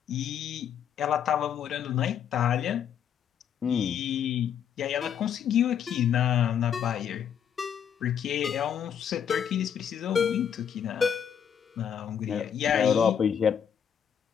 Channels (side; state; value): right; quieter; 8.5 dB